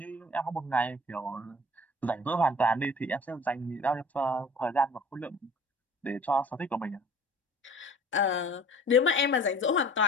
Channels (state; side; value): normal; both; correlation 0.47